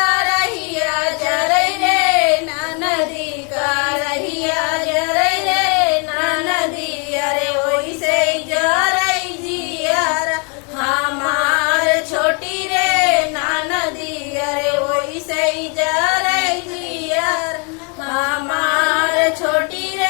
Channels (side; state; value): right; quieter; 37.1 dB